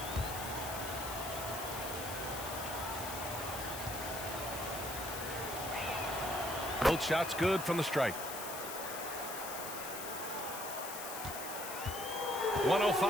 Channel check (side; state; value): left; noise; hiss, 7 dB below the sound